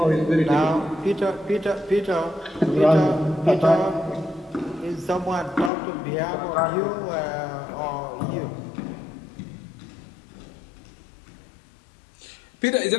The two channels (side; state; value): right; drops out; at 5.7 s